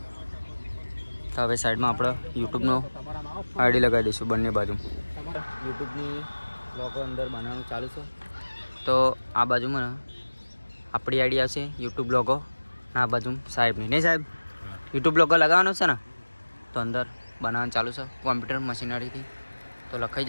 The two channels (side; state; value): both; inverted; correlation -1.00